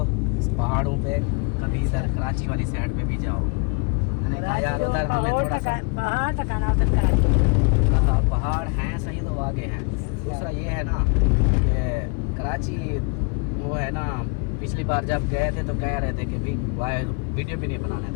इस पहाड़ों पे, कभी इधर कराची वाली साइड पे भी जाओ। मैंने कहा यार उधर हमें थोड़ा सा पहाड़ हैं सही तो आगे हैं। दूसरा ये है ना कि कराची वो है ना, पिछली बार जब गए थे तो कह रहे थे कि भी वीडियो भी नहीं बनाने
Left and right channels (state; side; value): quieter; right; 33.6 dB